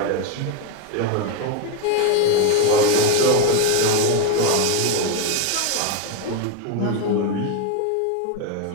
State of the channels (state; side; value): different; both; correlation 0.02